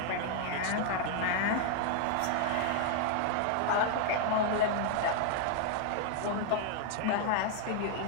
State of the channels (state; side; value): different; both; correlation 0.00